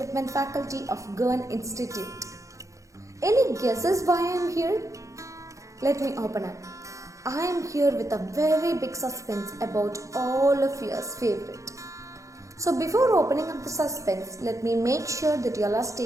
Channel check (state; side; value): late; left; 0.15 ms